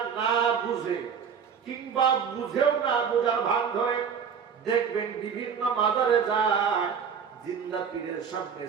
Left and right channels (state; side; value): quieter; left; 6.9 dB